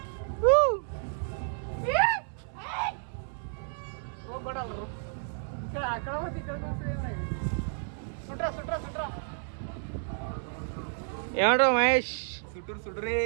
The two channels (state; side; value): silent; left; 57 dB below the other